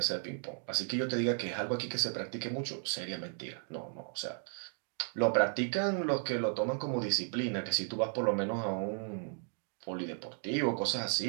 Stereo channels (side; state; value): left; silent; 55 dB below the other